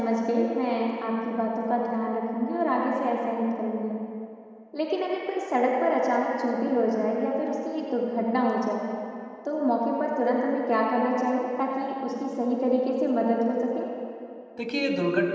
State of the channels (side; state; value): both; identical; correlation 1.00